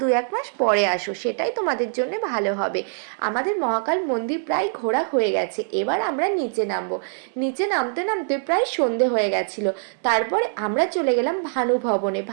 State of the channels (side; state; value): left; silent; digital silence